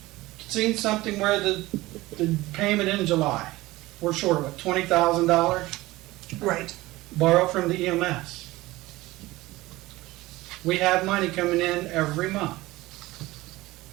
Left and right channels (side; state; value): left; quieter; 19.0 dB